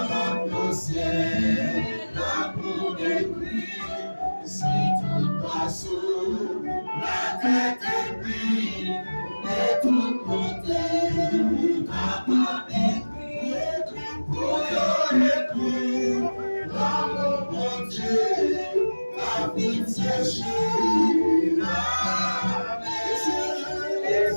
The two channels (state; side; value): inverted; both; correlation -1.00